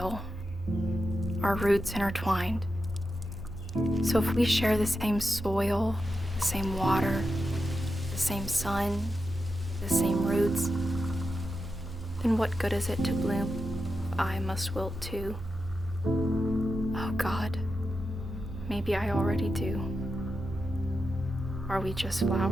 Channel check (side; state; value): both; normal; correlation 0.89